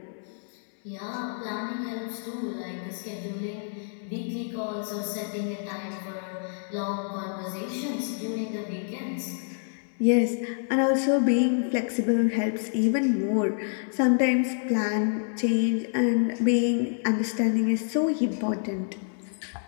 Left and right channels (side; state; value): right; silent; 60 dB below the other